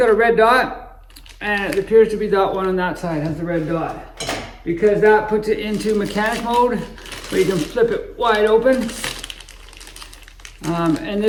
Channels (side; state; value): both; identical; correlation 1.00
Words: a red dot, and it appears to be that one on that side has the red dot, because that puts it into mechanic mode, where you can flip it wide open, and